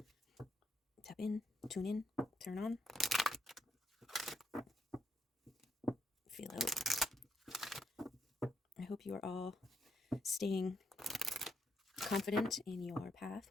Tap in, tune in, turn on. Feel out. I hope you are all staying confident in your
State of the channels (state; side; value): normal; both; correlation 0.76